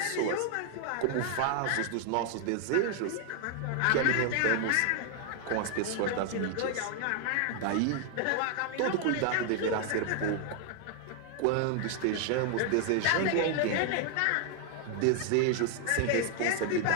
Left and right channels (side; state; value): both; different; correlation 0.00